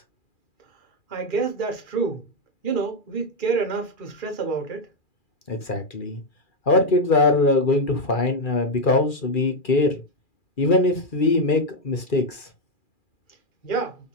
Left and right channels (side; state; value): right; late; 2.4 ms